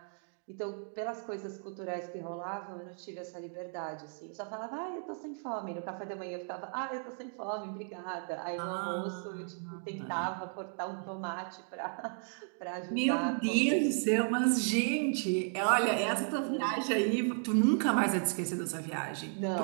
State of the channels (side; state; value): left; silent; 55 dB below the other